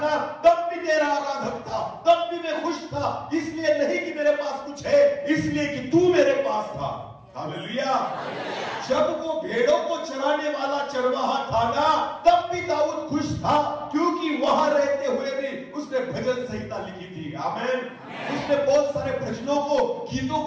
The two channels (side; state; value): both; identical; correlation 1.00